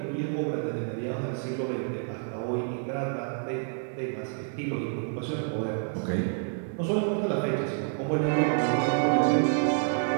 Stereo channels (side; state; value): left; silent; 59 dB below the other